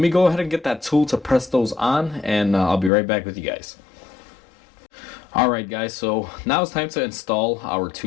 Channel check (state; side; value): drops out; right; at 2.9 s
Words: me go ahead and get that tool to press those on, and I'll be right back with you guys. Alright guys, so now it's time to install our